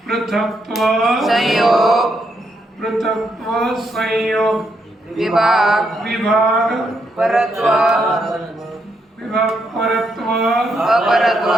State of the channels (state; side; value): normal; both; correlation 0.78